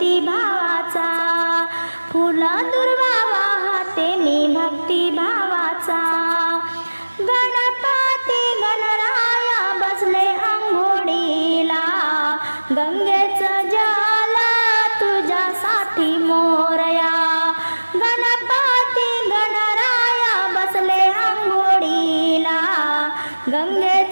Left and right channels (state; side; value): inverted; both; correlation -1.00